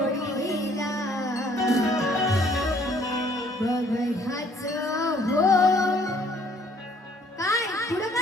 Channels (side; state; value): both; normal; correlation 0.61